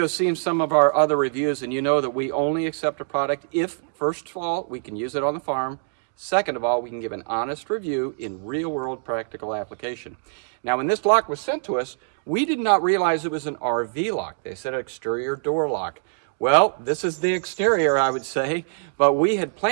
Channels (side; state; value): left; silent; digital silence